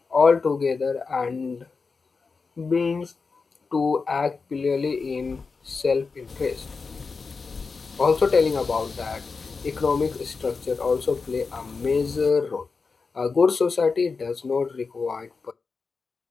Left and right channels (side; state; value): right; quieter; 4.7 dB